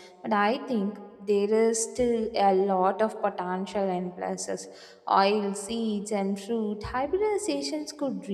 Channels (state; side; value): identical; both; correlation 1.00